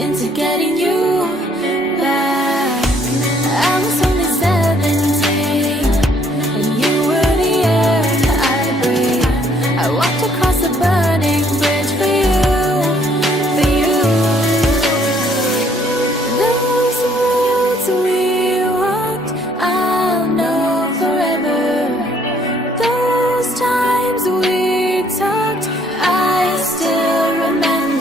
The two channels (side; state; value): both; normal; correlation 0.64